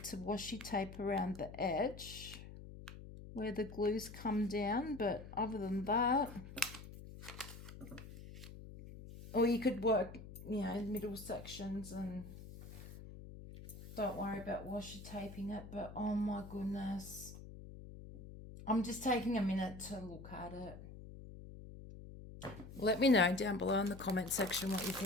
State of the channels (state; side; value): noise; left; hum, 14 dB below the sound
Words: to washi tape around the edge where the glues come down, but other than that, or you could work, you know, middle sections and don't worry about washi taping it. But oh my goodness, I'm just taking a minute to look at it. Let me know down below in the comment section what you